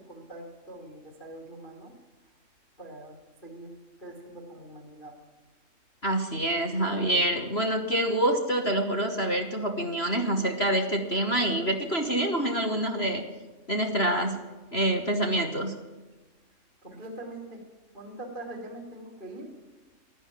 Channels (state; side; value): late; right; 3.0 ms